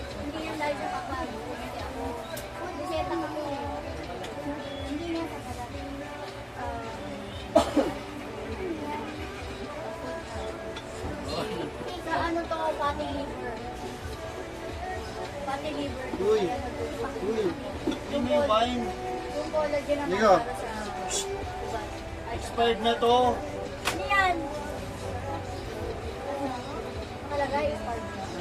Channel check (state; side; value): identical; both; correlation 1.00